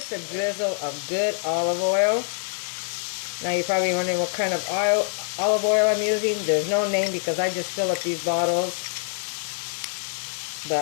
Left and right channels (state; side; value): silent; right; 62 dB below the other